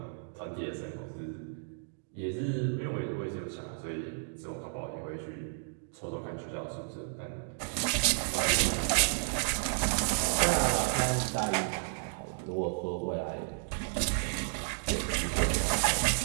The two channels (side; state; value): left; silent; digital silence